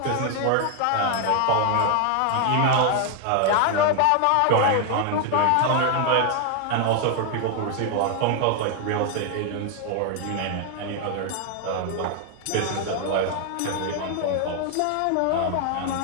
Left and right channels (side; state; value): both; different; correlation 0.00